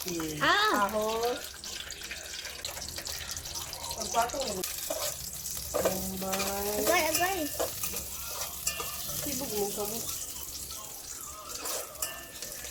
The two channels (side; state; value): both; identical; correlation 1.00